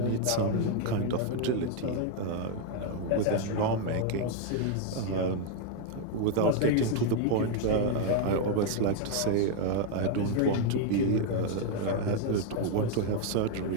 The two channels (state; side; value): different; both; correlation 0.00